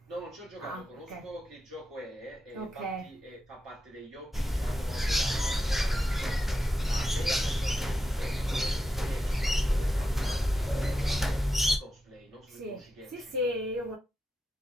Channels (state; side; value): normal; both; correlation 0.89